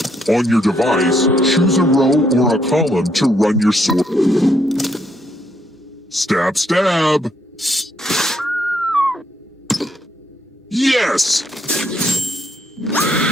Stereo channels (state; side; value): normal; both; correlation 0.73